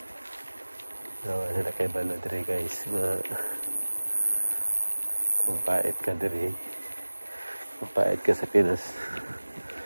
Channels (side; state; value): both; inverted; correlation -1.00